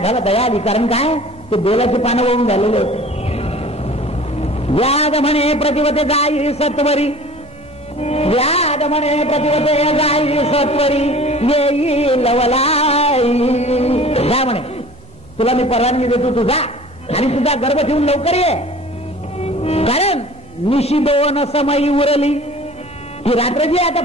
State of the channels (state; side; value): normal; both; correlation 0.45